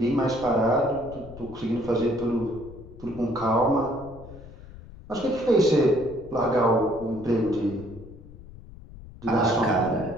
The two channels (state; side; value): noise; left; rumble, 17 dB below the sound